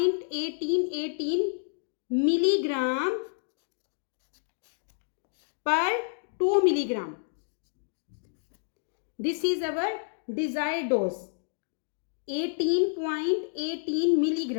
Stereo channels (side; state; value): right; silent; digital silence